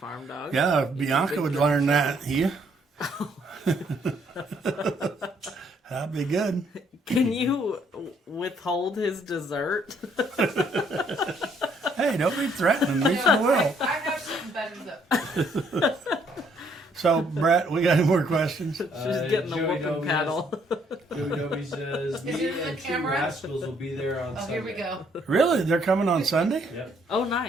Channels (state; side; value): normal; both; correlation 0.67